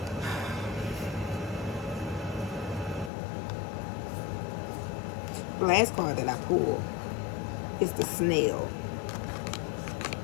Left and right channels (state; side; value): drops out; right; at 3.1 s